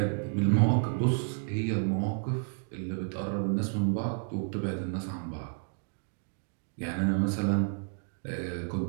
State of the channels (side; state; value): left; silent; 57 dB below the other